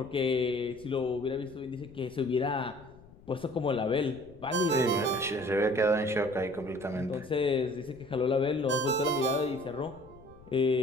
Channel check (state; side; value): noise; left; rumble, 23 dB below the sound